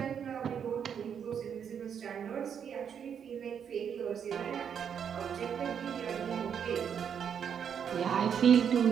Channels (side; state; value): left; quieter; 7.8 dB